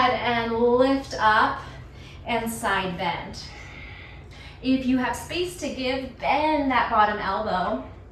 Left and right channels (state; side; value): identical; both; correlation 1.00